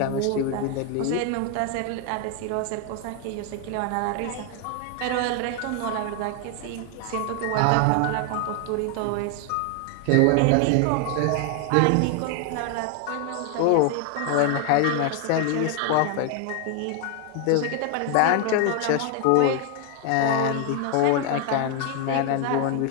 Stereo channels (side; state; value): both; different; correlation 0.00